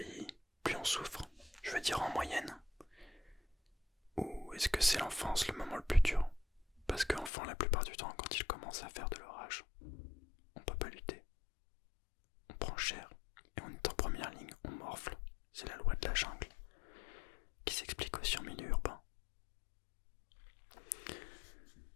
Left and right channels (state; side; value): drops out; right; at 7.3 s